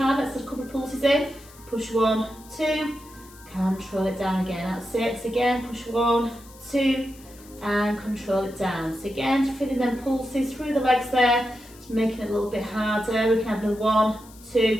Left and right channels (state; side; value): noise; left; hiss, 23 dB below the sound